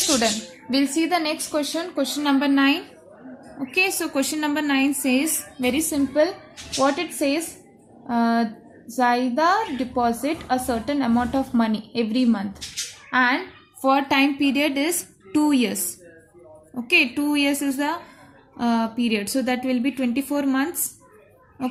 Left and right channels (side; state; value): both; identical; correlation 1.00